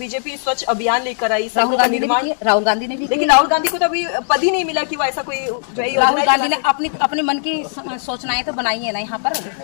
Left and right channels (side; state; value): right; silent; digital silence